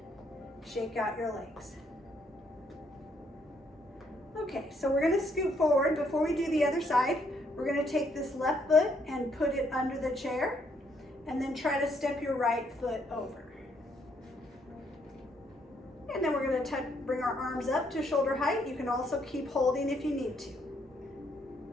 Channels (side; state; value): both; normal; correlation 0.71